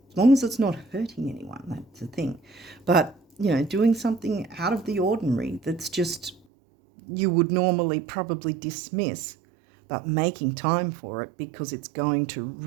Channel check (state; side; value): drops out; left; at 6.4 s